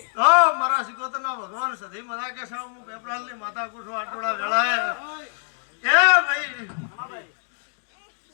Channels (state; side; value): silent; right; digital silence